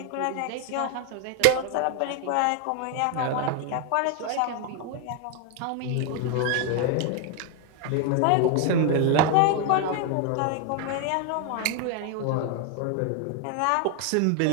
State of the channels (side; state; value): both; different; correlation 0.00